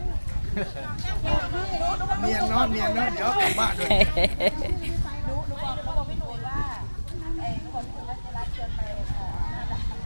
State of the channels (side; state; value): both; inverted; correlation -1.00